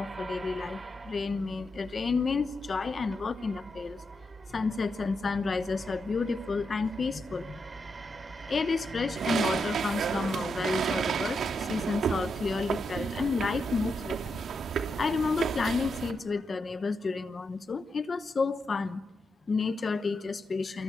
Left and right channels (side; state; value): both; normal; correlation 0.84